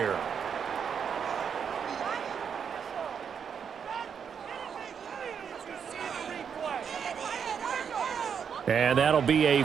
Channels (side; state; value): left; quieter; 7.2 dB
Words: And that'll be a